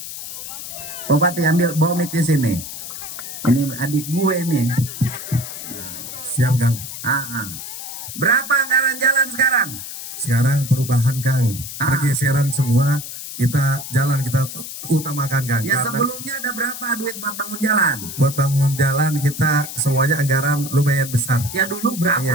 Bupati ambil bawa mic di sini. Ini adik gue nih. Siap, Kang. Berapa anggaran jalan sekarang? Sekarang perubahan, Kang. Pergeseran semua, kita jalan kita utamakan, Kang. Ya, sebelumnya ada berapa duit buat bangun jalan? Buat bangun jalan kita semuanya anggaran lumayan besar. Ya dulu berapa?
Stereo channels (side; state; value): left; noise; hiss, 9 dB below the sound